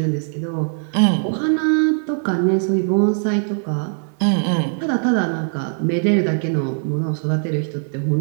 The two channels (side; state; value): left; silent; digital silence